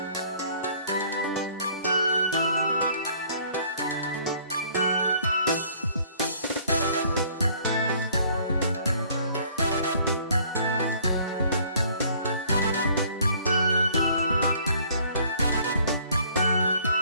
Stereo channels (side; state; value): both; inverted; correlation -0.58